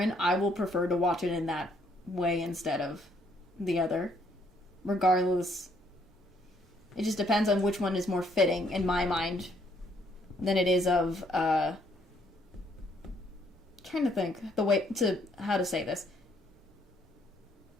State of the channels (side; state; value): both; normal; correlation 0.68